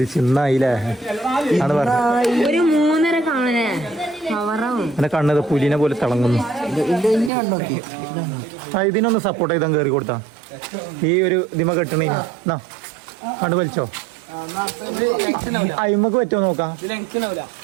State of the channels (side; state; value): left; drops out; at 7.3 s